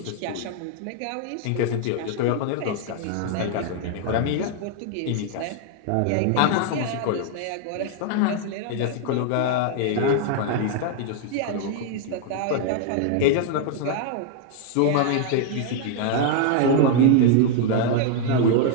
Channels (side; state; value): both; different; correlation 0.00